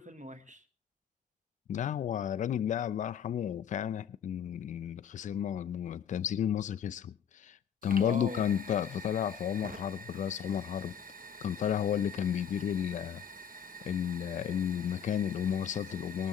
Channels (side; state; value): right; quieter; 8.4 dB